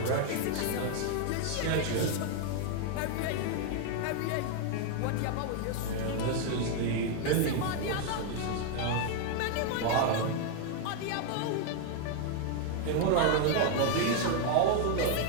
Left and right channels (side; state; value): both; different; correlation 0.00